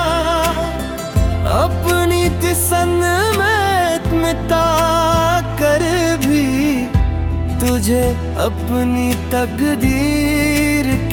अपनी तसन्नुत मिटा कर भी तुझे अपनी तकदीर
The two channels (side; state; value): both; identical; correlation 1.00